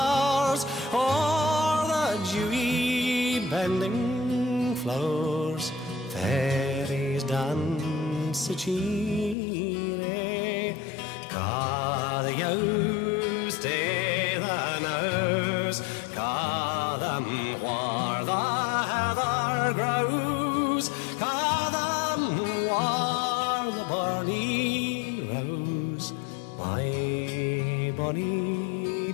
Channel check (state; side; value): drops out; right; at 9.3 s